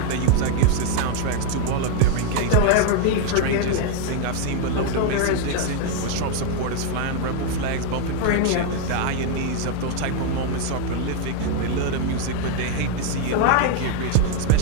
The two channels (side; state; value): both; different; correlation 0.00